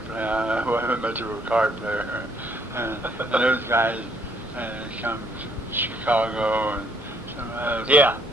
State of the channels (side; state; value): both; normal; correlation 0.66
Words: play. I wasn't much of a card player. And those guys come from Chicago and some others. Yeah.